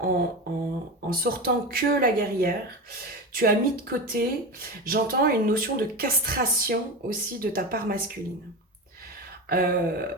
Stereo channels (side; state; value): both; normal; correlation 0.23